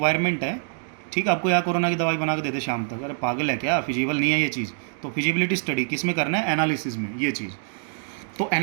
है। ठीक है, आपको यहाँ कोरोना की दवाई बना के दे दे शाम तक, अरे पागल है क्या, फिजिबल नहीं है ये चीज़। तो फिजिबिलिटी स्टडी किस में करना है? एनालिसिस में, ये चीज़। तो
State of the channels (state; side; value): silent; left; digital silence